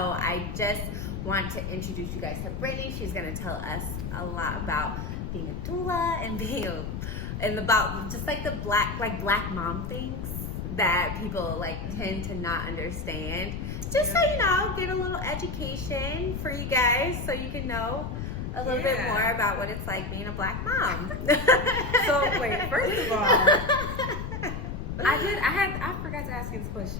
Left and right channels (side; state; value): left; noise; rumble, 5 dB below the sound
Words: just want to introduce you guys to Brittany. She's going to tell us a lot about being a doula and about just like the black mom things that people tend to not understand. Just so you know, get a little education for you guys so you can know a little bit more about what it's like being a Black mom. So wait, first of all, I forgot to ask you this